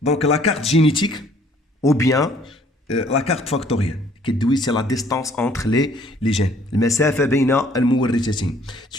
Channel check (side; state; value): both; normal; correlation 0.59